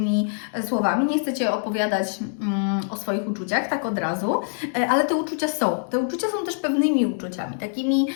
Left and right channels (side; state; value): right; silent; digital silence